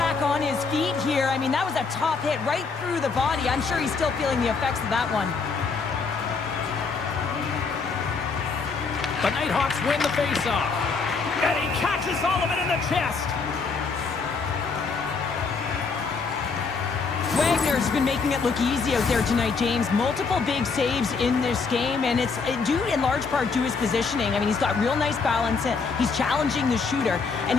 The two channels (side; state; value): right; quieter; 4.8 dB